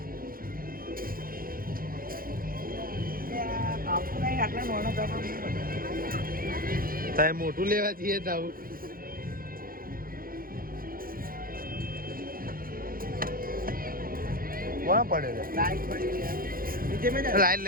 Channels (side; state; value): left; late; 0.42 ms